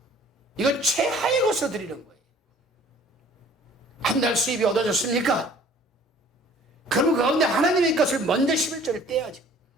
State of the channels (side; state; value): both; normal; correlation 0.52